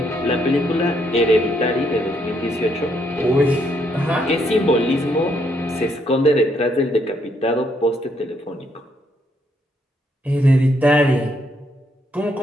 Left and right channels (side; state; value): both; normal; correlation 0.73